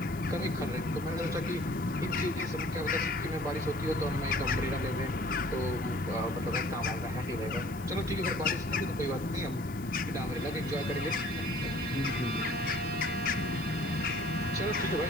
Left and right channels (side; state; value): left; noise; hiss, 21 dB below the sound